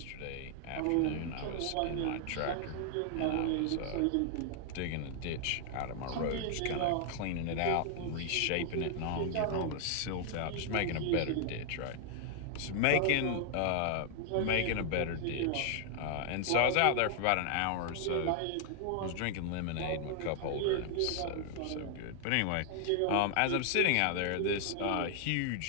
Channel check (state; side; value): different; both; correlation 0.00